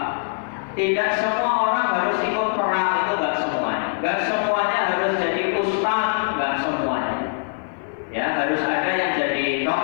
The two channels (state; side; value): silent; right; 55 dB below the other